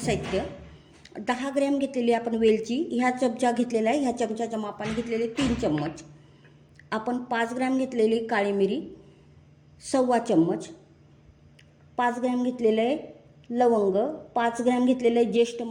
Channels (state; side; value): identical; both; correlation 1.00